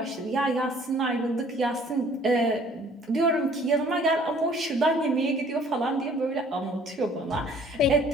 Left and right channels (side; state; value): both; normal; correlation 0.55